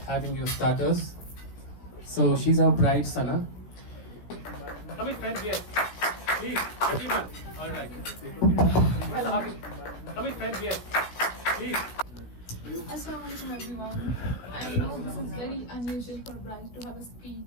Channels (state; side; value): late; right; 16 ms